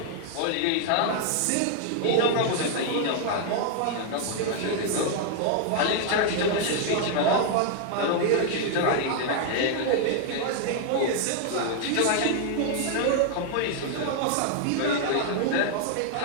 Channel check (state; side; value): different; both; correlation 0.00